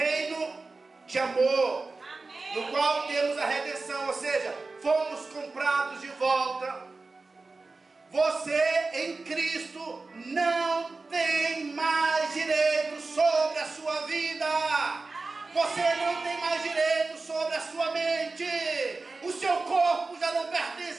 de amor, amém, no qual temos a redenção, ou seja, fomos comprados de volta. Você em Cristo não tem mais direito sobre a sua vida. Você não tem mais direito sobre a sua mente. O seu corpo já não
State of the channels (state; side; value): quieter; left; 3.7 dB